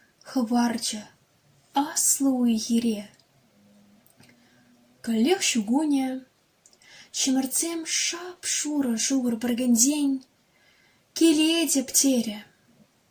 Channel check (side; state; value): both; identical; correlation 1.00